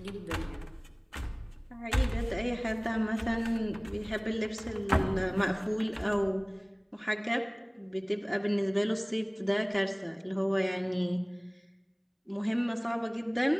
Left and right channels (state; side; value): identical; both; correlation 1.00